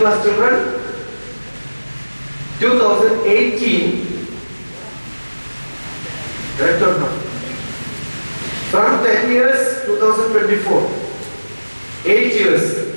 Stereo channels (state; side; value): inverted; both; correlation -1.00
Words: children, 2018, correct or not? From 10 years, 2024. 8 years.